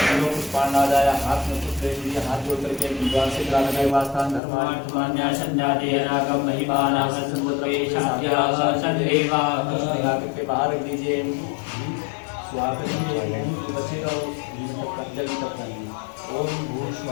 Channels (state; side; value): drops out; right; at 4.4 s